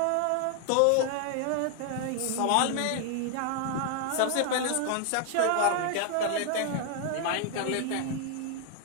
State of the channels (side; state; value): both; different; correlation 0.00